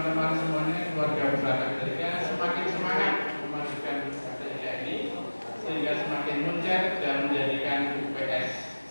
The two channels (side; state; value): both; inverted; correlation -1.00